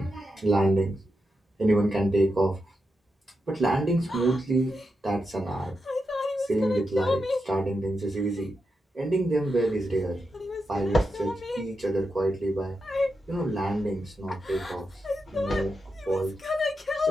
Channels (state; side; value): normal; both; correlation 0.87